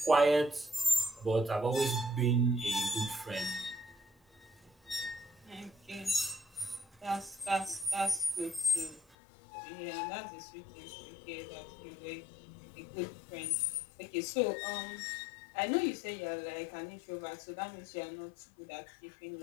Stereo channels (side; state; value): right; drops out; at 9.2 s